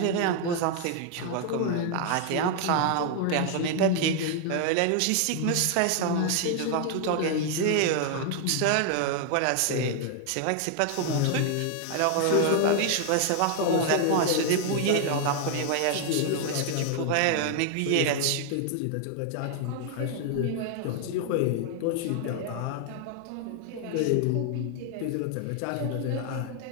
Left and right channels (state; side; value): different; both; correlation 0.00